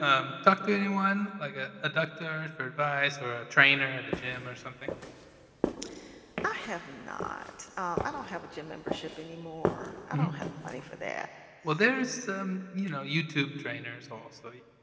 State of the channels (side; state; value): both; identical; correlation 1.00